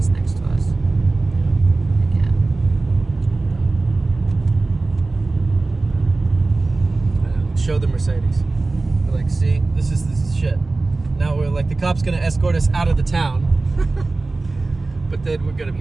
next to us. Show the Mercedes. We're like, see, this is shit. Now we're like, the cop's gonna escort us out of the town, but then we're gonna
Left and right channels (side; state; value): left; quieter; 3.4 dB